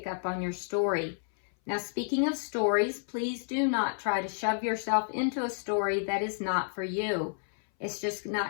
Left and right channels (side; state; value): right; silent; 57 dB below the other